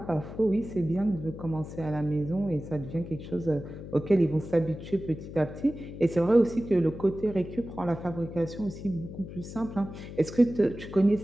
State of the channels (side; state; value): left; noise; hum, 11 dB below the sound